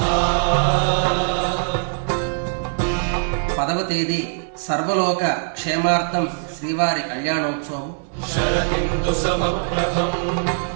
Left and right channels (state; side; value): silent; left; digital silence